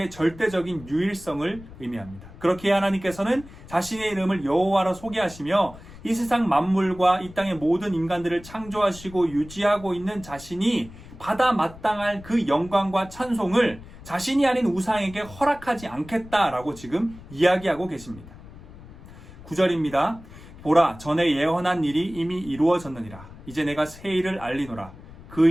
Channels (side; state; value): left; noise; rumble, 18 dB below the sound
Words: 절대적인 유일성을 의미합니다. 그렇게 하나님께서는 자신의 이름을 여호와로 소개하시며 이 세상 만물과 이 땅의 모든 인간들을 창조하시고 유지하고 있는 자신이 받아 마땅할 그 영광과 찬송을 자신이 아닌 우상에게 허락하지 않겠다라고 지금 이야기하고 계십니다. 9절입니다. 보라, 전에 예언한 일이 이미 이루어졌느니라. 이제 내가 새 일을 알리노라. 그